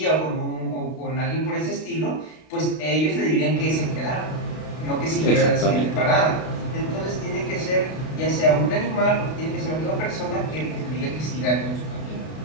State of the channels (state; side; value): late; right; 32 ms